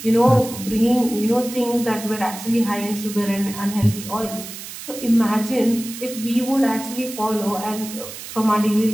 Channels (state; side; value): noise; right; hiss, 11 dB below the sound